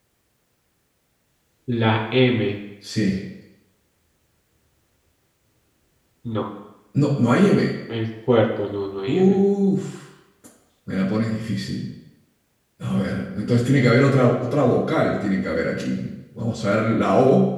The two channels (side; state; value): both; identical; correlation 1.00